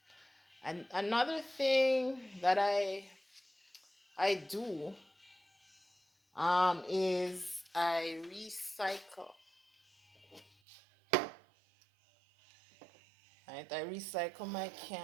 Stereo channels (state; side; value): drops out; left; at 10.5 s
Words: And another thing that I do is I recycle. Right, I recycle my